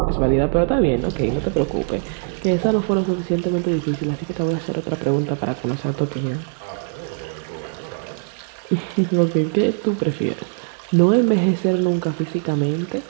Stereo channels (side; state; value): left; silent; 59 dB below the other